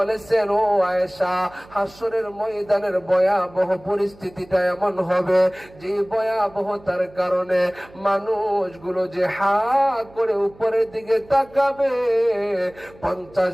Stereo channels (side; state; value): right; noise; hum, 24 dB below the sound